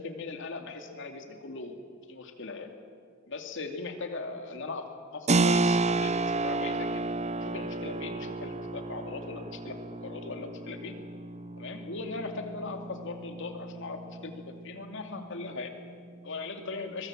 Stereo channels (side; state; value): both; normal; correlation 0.32